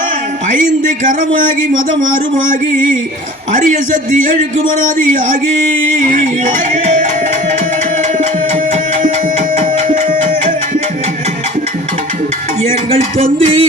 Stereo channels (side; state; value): both; normal; correlation 0.43